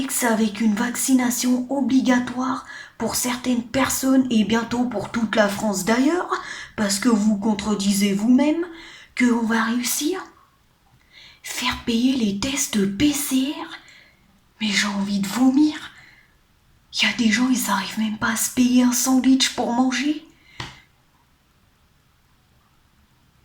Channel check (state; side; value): identical; both; correlation 1.00